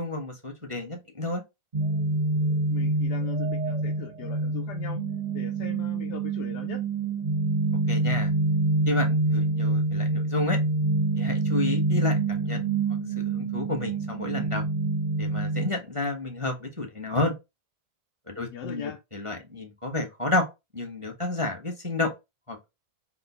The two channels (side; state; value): left; late; 1.5 ms